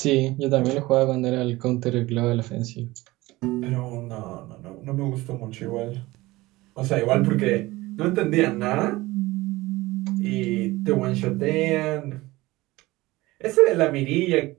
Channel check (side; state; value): left; quieter; 19.6 dB